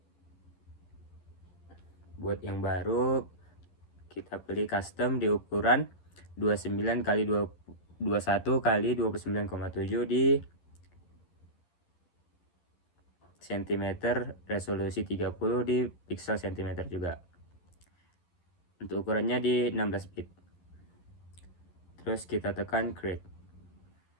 Buat yang baru, kita pilih custom di ukuran 29 x 21 x 29,7 di cm, resolusi 30 di pixel cm juga. Untuk ukurannya di 16 bit. Terus kita tekan create.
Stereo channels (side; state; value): right; late; 11 ms